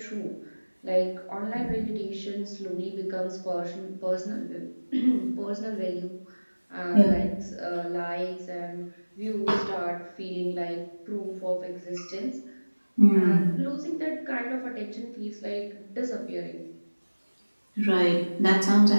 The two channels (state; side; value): inverted; both; correlation -1.00